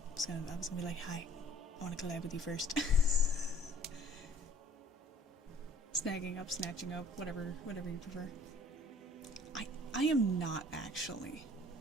I was gonna be like, hi, I wanna collab with you first. Snagging up, snatching up, whatever you prefer. I am not actually.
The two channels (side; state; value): both; normal; correlation 0.55